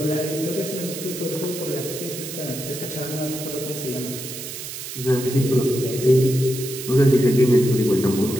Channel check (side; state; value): right; noise; hiss, 9 dB below the sound